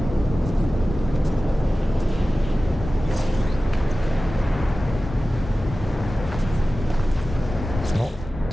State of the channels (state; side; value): normal; both; correlation 0.96